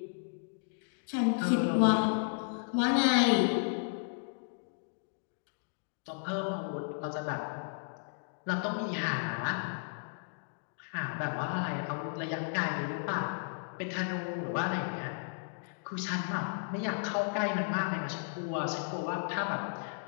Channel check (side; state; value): right; silent; digital silence